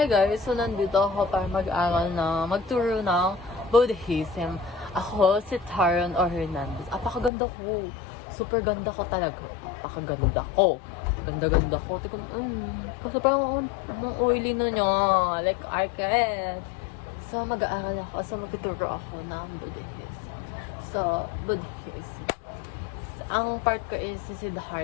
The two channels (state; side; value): drops out; right; at 7.3 s